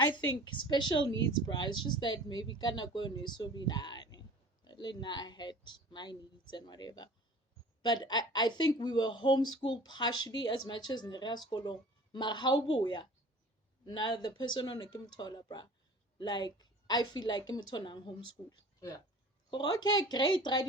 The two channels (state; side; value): normal; both; correlation 0.44